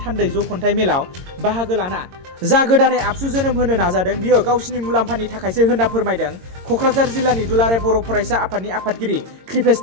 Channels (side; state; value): left; late; 22 ms